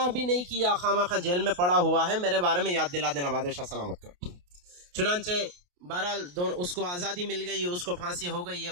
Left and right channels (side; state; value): left; late; 28 ms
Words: بھی نہیں کیا، خامخواہ جیل میں پڑا ہوا ہے، میرے بارے میں یاد دلا دینا بادشاہ سلامت کو۔ چنانچہ بہرحال اس کو آزادی مل گئی، اس کو پھانسی ہو گئی، یہ